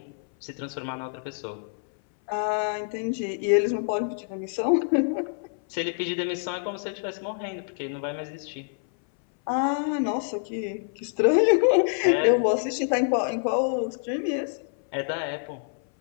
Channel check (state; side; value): silent; right; 58 dB below the other